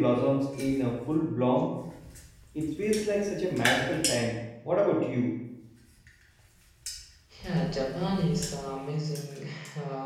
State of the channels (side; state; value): both; identical; correlation 1.00